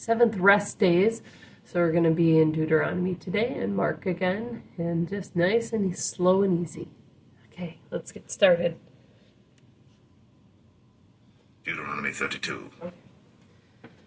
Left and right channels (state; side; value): identical; both; correlation 1.00